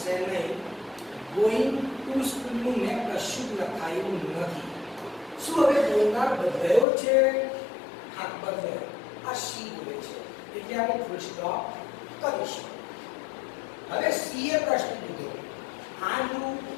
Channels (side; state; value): right; drops out; at 6.9 s